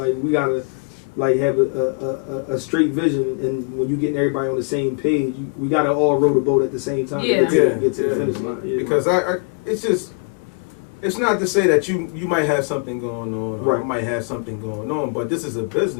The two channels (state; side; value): quieter; right; 39.3 dB